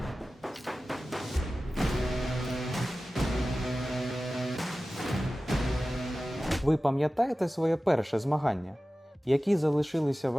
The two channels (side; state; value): both; normal; correlation 0.96